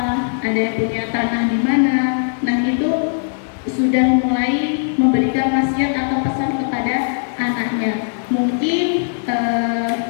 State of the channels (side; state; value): right; silent; 57 dB below the other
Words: ada yang punya tanah di mana. Nah, itu sudah mulai memberikan wasiat atau pesan kepada anaknya. Mungkin